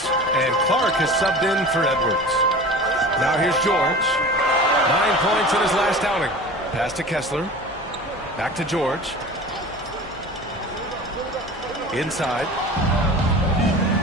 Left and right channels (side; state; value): both; normal; correlation 0.37